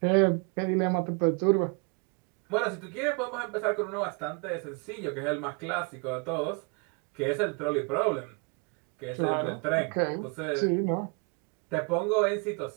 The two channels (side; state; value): left; quieter; 34.0 dB